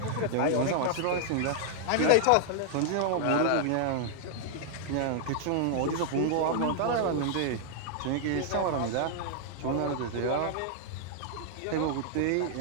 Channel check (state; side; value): different; both; correlation -0.01